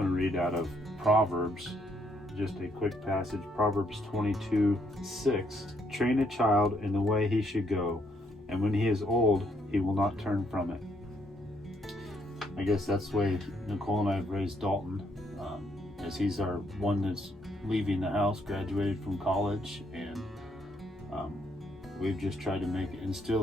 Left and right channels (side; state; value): both; normal; correlation 0.72